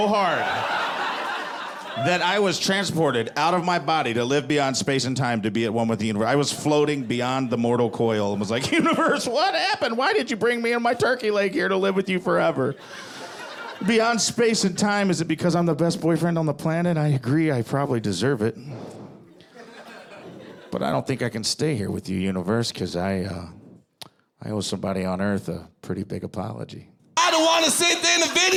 hard that I was transported out of my body to live beyond space and time to be at one with the universe. I was floating beyond the mortal coil and was like, universe, what happened? Why did you bring me and my turkey leg here to live with you forever? Beyond space and time, is it because I'm the best boyfriend on the planet? I agree, I probably deserve it. But I don't think I can stay here with you, universe, because I owe somebody on Earth a pretty big apology. I don't want to sit there in the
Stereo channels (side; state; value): both; identical; correlation 1.00